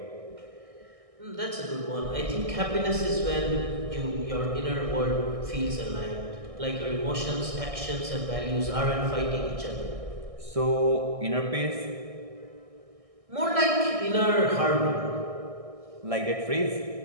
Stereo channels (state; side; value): late; left; 1.6 ms